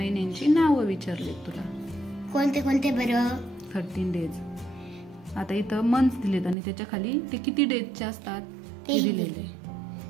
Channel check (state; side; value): drops out; left; at 6.6 s